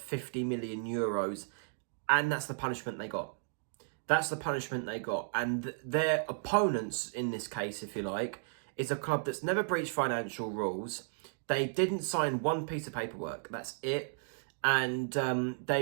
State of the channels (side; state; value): left; silent; digital silence